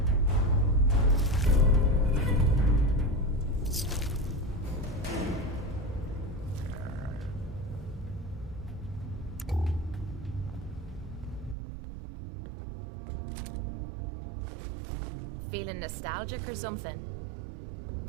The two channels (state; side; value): drops out; left; at 11.6 s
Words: Feeling nostalgic or something?